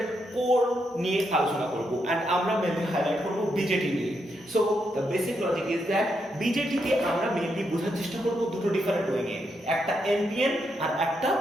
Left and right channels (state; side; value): normal; both; correlation 0.80